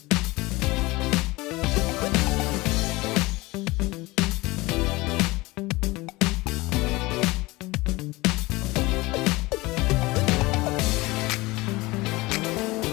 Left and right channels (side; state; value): right; quieter; 21.7 dB